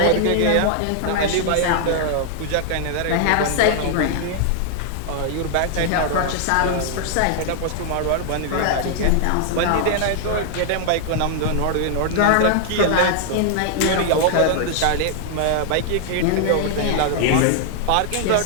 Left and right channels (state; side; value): different; both; correlation -0.01